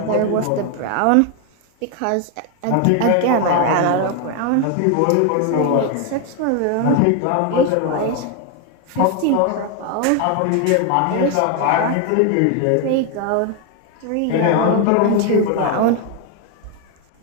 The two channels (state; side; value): different; both; correlation 0.01